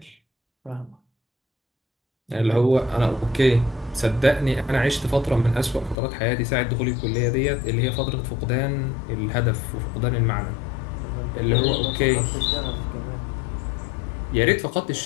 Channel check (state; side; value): drops out; right; at 6.0 s